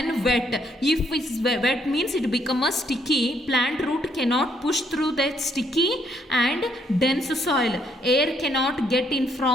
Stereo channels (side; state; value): both; normal; correlation 0.71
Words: wet. If it's wet means it become a sticky. Plant root cannot push through that sticky and dense soil. Air cannot get in